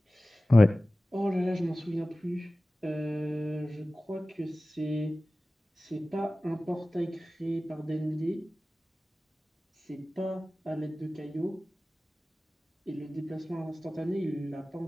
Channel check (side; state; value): both; normal; correlation 0.97